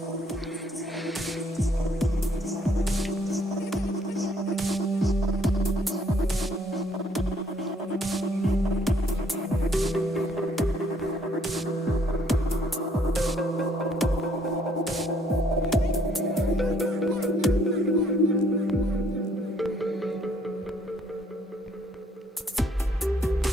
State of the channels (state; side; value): normal; both; correlation 0.65